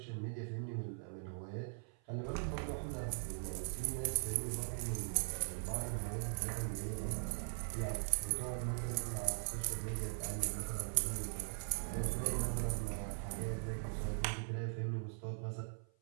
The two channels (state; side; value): silent; left; 51 dB below the other